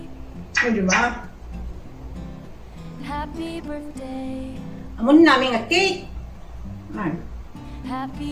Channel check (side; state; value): both; identical; correlation 1.00